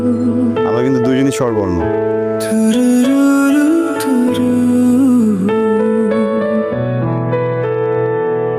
আমরা কিন্তু দুজনই স্বরবর্ণ।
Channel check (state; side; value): identical; both; correlation 1.00